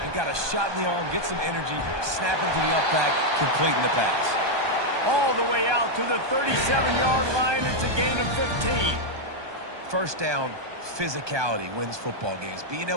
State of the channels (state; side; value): late; left; 1.2 ms